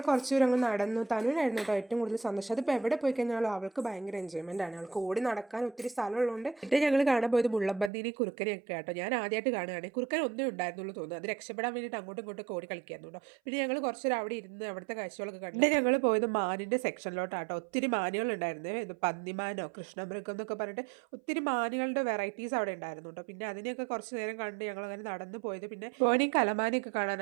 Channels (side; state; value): left; drops out; at 7.9 s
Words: കുറച്ച് ദൂരം അങ്ങ് നടന്നു. തനുവിനായിരുന്നു കേട്ടോ ഏറ്റവും കൂടുതൽ സന്തോഷം. അതിപ്പോൾ എവിടെ പോയി കഴിഞ്ഞാലും അവൾക്ക് ഭയങ്കര എൻജോയ്മെൻ്റ് ആണ്. അവൾക്ക് ഓടി നടക്കാൻ ഒത്തിരി സ്ഥലമുള്ളതുകൊണ്ട്. എന്നിട്ട് ഞങ്ങൾ കാണാൻ പോയത് മുള്ളമ്പന്നീനി കുറുക്കനെയൊക്കെ കേട്ടോ. ഞാൻ ആദ്യമായിട്ട് കാണുകയാണ്. കുറുക്കൻ ഒന്നേ ഉണ്ടായിരുന്നുള്ളൂ തോന്നുന്നു. അത് രക്ഷപ്പെടാൻ വേണ്ടിയിട്ട് അങ്ങോട്ടും ഇങ്ങോട്ടും ഓടി കളിക്കാറുണ്ടോ. പിന്നെ ഞങ്ങൾ കുറച്ചൊരു അവിടെ ഇരുന്ന് അവിടുത്തെ കാഴ്ചകളൊക്കെ കണ്ടു. പിന്നെ ഞങ്ങൾ പോയത് മാനിൻ്റെ സെക്ഷനിലോട്ടാട്ടോ. ഒത്തിരി മാനുകളുണ്ടായിരുന്നു. ഇത് പന്നിമാനോ കൃഷ്ണമൃഗം എന്നൊക്കെ പറഞ്ഞിട്ട് ഒത്തിരി മാനുകളുടെ വെറൈറ്റീസ് അവിടെ ഉണ്ടായിരുന്നു കേട്ടോ. പിന്നെ അതിനെയൊക്കെ കുറച്ച് നേരം കണ്ട് ഞങ്ങൾ അങ്ങനെ നടന്നു പോയത്. പിന്നെ പോയി കലമാനയൊക്കെ